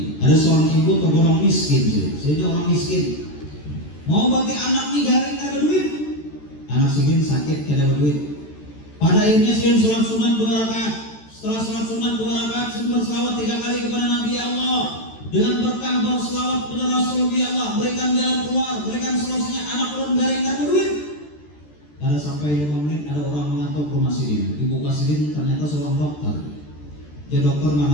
Ada seorang ibu tergolong miskin, jadi orang miskin mau bagi anak nih garing ada duit, anak segini sakit kada ada duit. Pada akhirnya segini sholat sunat 2 rakaat. Setelah sholat sunat 2 rakaat, segini berselawat 3 kali kepada Nabi Allah. Dengan berkah berselawat kepada Rasul Allah, berikan jalan keluar, berikan solusinya, anak turun garing ada duit. Kada sampai 5 menit ada orang mengantuk rumah sidin. Dibuka sidin ternyata seorang dokter. Ya dokter,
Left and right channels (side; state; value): right; late; 13 ms